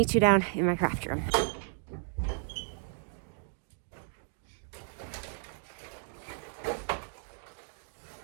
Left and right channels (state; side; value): silent; left; 55 dB below the other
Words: you down in my craft room.